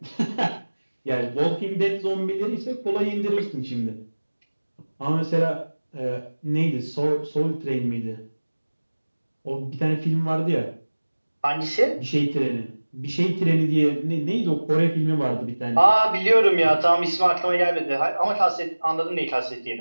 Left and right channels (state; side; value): inverted; both; correlation -1.00